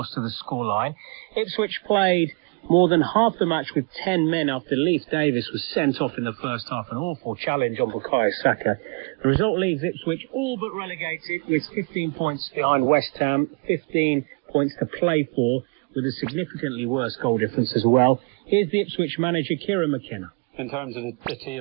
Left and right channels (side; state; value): left; quieter; 34.0 dB